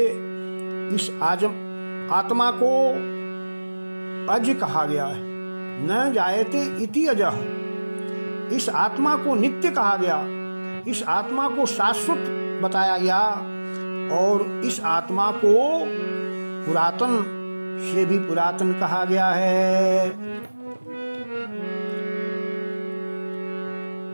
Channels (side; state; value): both; inverted; correlation -1.00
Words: इस आत्मा को अज कहा गया है, न जायते इति अजः। इस आत्मा को नित्य कहा गया, इस आत्मा को शाश्वत बताया गया, और इस आत्मा को पुरातन से भी पुरातन कहा गया है।